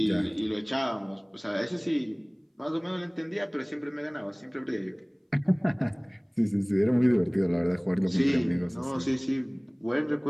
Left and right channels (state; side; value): identical; both; correlation 1.00